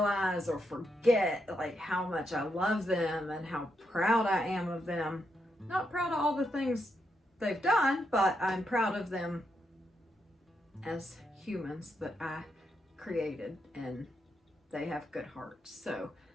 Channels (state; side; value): normal; both; correlation 0.81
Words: or forget like how much I love them and how proud I am of them? Not proud of all the things they've done, but I'm proud of them as humans that I created, and they have good hearts. So